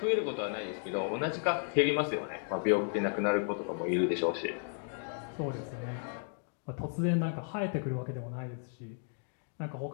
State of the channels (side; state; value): right; silent; 55 dB below the other